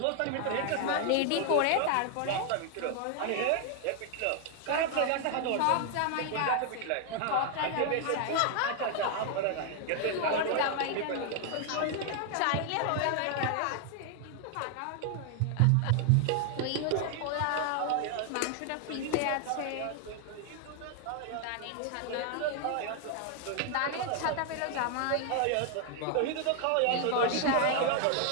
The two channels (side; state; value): both; different; correlation 0.00